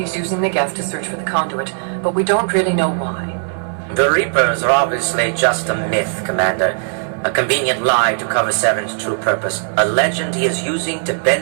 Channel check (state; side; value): silent; left; digital silence